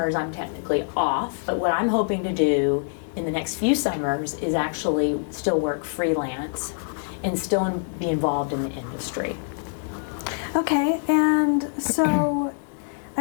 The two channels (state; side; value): silent; right; digital silence